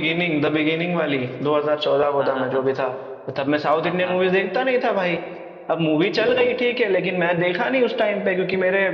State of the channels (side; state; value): both; identical; correlation 1.00